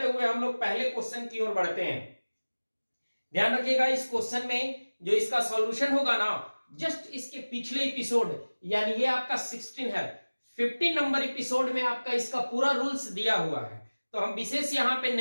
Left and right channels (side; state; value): both; inverted; correlation -1.00